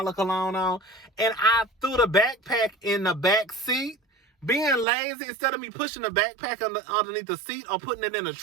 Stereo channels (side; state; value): left; drops out; at 4.9 s